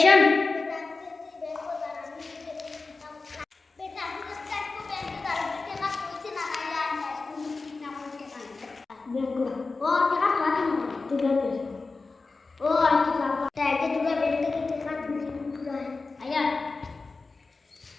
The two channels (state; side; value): quieter; right; 3.9 dB